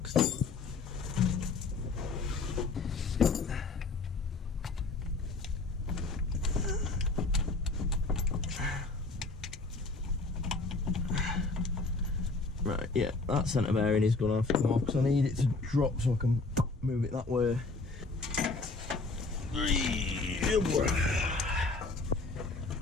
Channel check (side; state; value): right; quieter; 3.7 dB